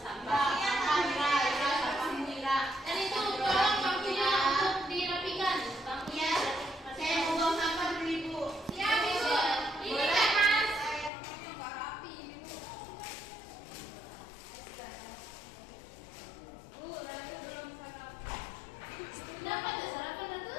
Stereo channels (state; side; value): drops out; right; at 11.1 s